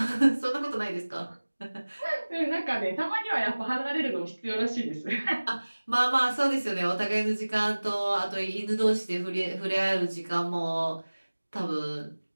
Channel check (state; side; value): inverted; both; correlation -1.00